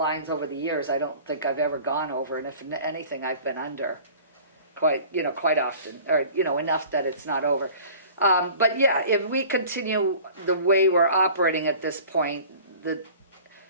over the years, I don't think I've ever gone over, and if anything, I've been under quite often, or, enough that it's not over. But yeah, if we continue the way we're operating at this point,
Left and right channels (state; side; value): inverted; both; correlation -0.45